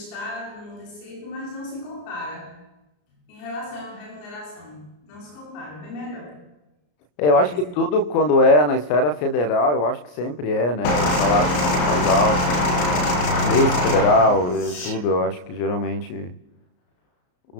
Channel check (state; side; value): late; right; 34 ms